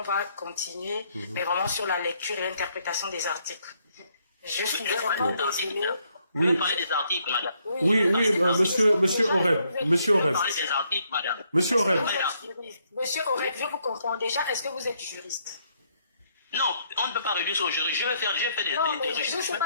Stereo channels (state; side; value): inverted; both; correlation -0.72